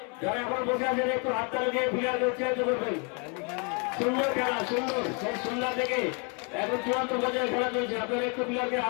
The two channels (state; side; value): quieter; right; 35.4 dB